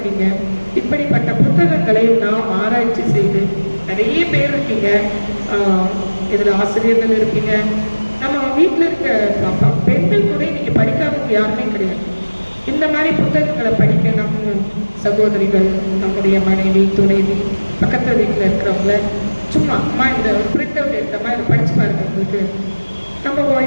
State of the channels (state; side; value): inverted; both; correlation -1.00